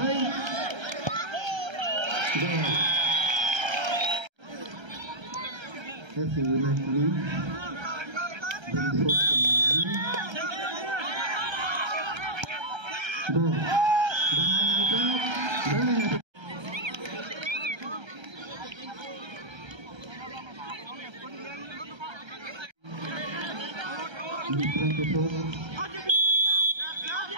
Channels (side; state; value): left; late; 1.3 ms